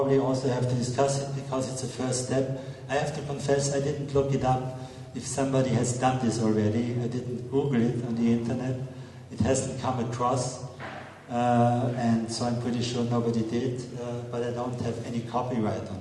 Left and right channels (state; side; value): identical; both; correlation 1.00